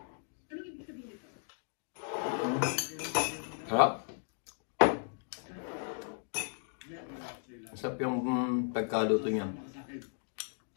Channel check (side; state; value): right; silent; digital silence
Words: Anong ibig sabihin ito? Harap? Masarap yung pagkaluto niya.